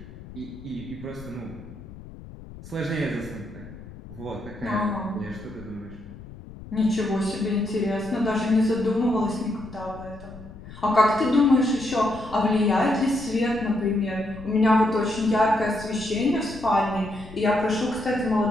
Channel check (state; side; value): noise; left; rumble, 16 dB below the sound